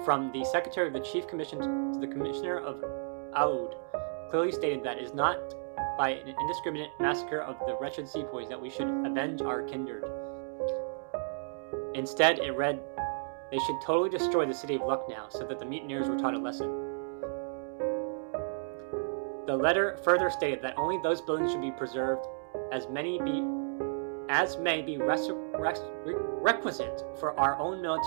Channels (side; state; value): left; silent; digital silence